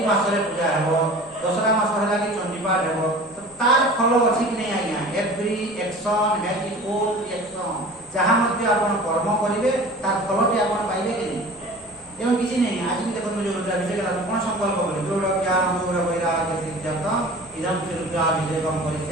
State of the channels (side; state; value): both; normal; correlation 0.41